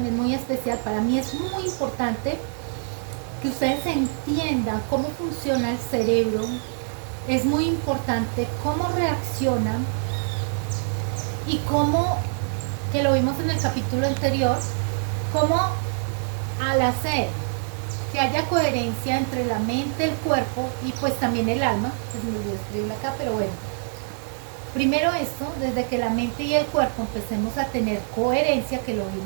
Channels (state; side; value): silent; left; 60 dB below the other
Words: muy especial. Para mí es muy importante que ustedes entiendan cómo funciona el cerebro. Es muy importante cómo reacciona y cómo, que lo vimos en el capítulo anterior, cómo al hacer que haya coherencia entre la mente, el cuerpo y pues también el alma, pues me olvidé escribirlo acá, pero bueno. Primero esto, desde que la mente y el cuerpo empecemos a tener coherencia, que lo